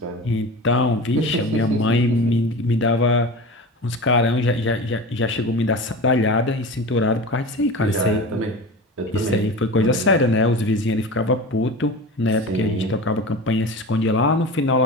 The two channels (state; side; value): normal; both; correlation 0.31